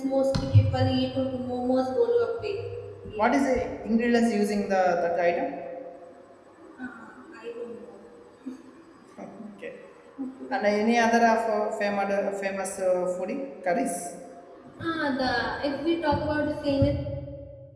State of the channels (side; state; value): both; identical; correlation 1.00